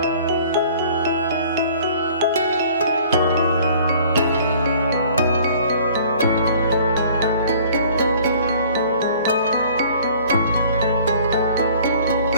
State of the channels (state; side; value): inverted; both; correlation -0.52